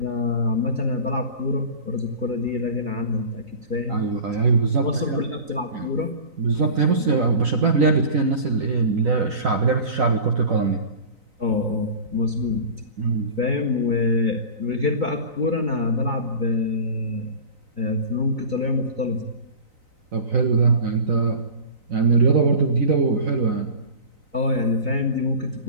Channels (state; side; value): late; left; 3.9 ms